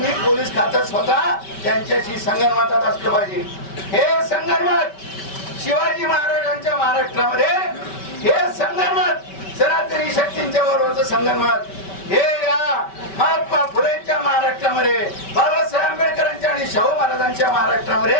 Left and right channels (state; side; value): late; right; 5.2 ms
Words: पोलीस खात्यात स्वतः त्यांच्याशी संगनमतात असलं पाहिजे. हे संगनमत शिवाजी महाराजांच्या महाराष्ट्रामध्ये, हे संगनमत सनातनी शक्तींच्या बरोबरचं संगनमत, हे या महात्मा फुलेंच्या महाराष्ट्रामध्ये, बाबासाहेब आंबेडकरांच्या आणि शाहू महाराजांच्या